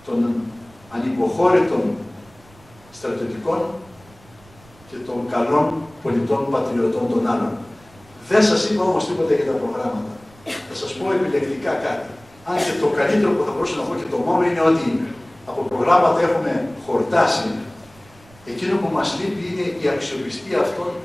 των ανυποχώρητων στρατιωτικών και των καλών πολιτών πατριωτών των άλλων. Δεν σας είπα όμως τίποτα για τα προγράμματα. Θα σας πω επιλεκτικά κάτι. Αν και το καλύτερο που θα μπορούσα να πω και το μόνο είναι ότι από προγράμματα έχουμε χορτάσει. Εκείνο που μας λείπει είναι η αξιοπιστία αυτών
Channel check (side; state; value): right; noise; rumble, 26 dB below the sound